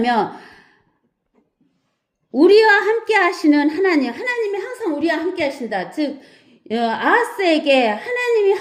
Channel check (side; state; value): both; identical; correlation 1.00